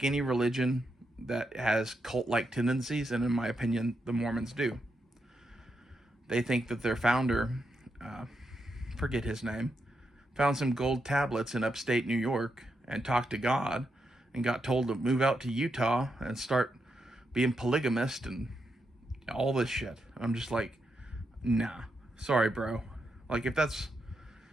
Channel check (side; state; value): both; normal; correlation 0.83